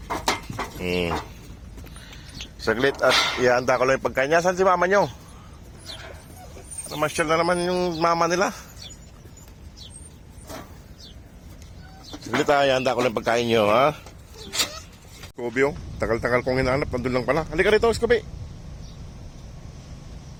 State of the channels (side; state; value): both; identical; correlation 1.00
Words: Saglit at ihanda ko lang yung pagkain niya. Saan si mama nyo? Namasyal na naman yung mama nila. Saglit ha, ihanda ko lang yung pagkain nyo ha. Scooby oh, tagal-tagal kong hinahanap. Nandun lang pala. Halika rito Scooby.